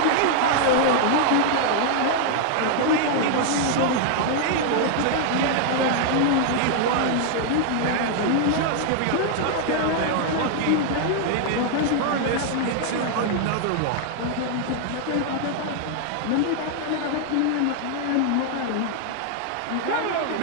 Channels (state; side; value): different; both; correlation 0.00